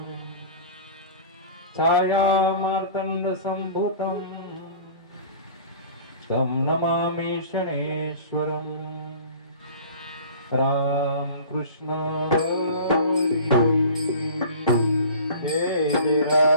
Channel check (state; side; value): inverted; both; correlation -0.41